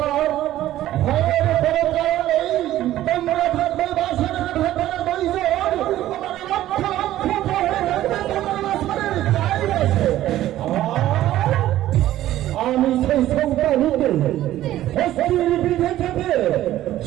ভয়ের কোনো কারণ নেই। তোমরা থাকবে বাসনের ভেতরে দুইজন, তোমার লক্ষ লক্ষ ভয়ে থাকবে তোমার বাসনের চারিপাশে। আমি সেই সন্তানকে হস্তির বিধে থেকে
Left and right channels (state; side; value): quieter; left; 13.8 dB